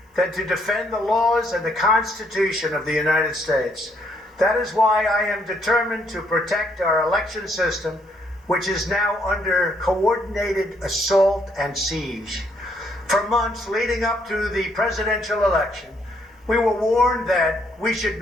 than to defend the laws and the Constitution of the United States. That is why I am determined to protect our election system, which is now under coordinated assault and siege. For months leading up to the presidential election, we were warned that we should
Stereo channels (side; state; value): both; normal; correlation 0.71